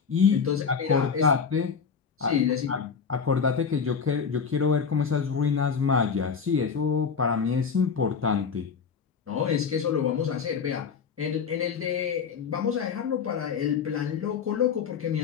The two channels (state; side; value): quieter; right; 6.2 dB